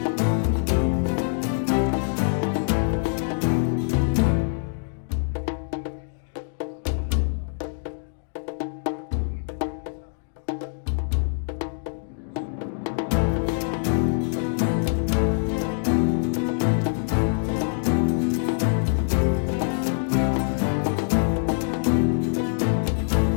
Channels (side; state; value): right; silent; digital silence